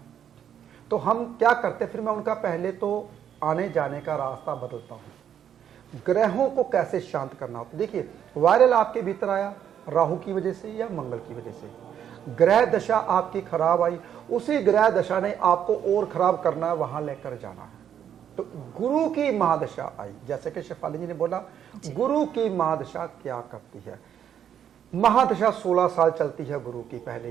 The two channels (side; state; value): left; quieter; 9.3 dB